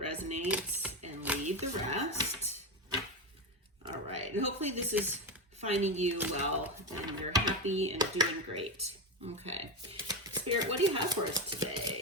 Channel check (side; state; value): both; normal; correlation 0.13